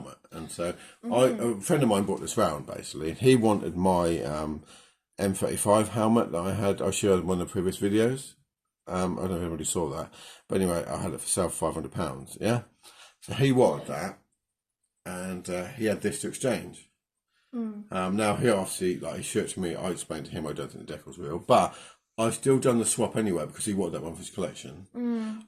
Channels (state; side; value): identical; both; correlation 1.00